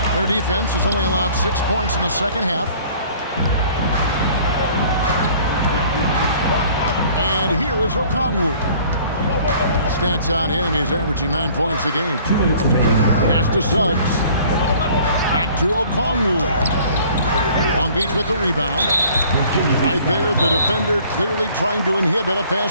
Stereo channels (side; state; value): both; inverted; correlation -0.53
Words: Their defense has only allowed 6 points in the second half. And here is Okongwu. Stats on him, he's averaging 9 points a game. 2 minutes remaining in the third. Pass to Suggs. Back to Okongwu. Long Beach with the rebound. Right there, the defender clearly trying to inhibit a